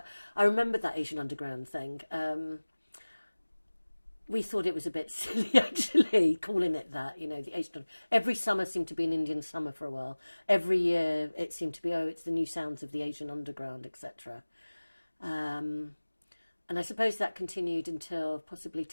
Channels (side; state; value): both; inverted; correlation -1.00